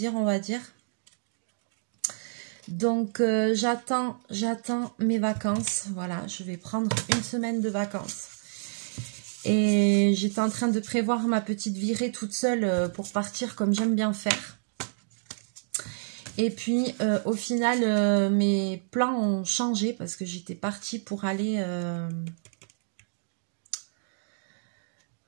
on va dire. Donc, j'attends mes vacances. Voilà, je vais prendre une semaine de vacances. Et j'étais en train de prévoir ma petite virée toute seule pour partir comme j'aime bien faire. Et puis, au final, mes plans ont changé parce que j'étais partie pour aller...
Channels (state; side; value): silent; left; digital silence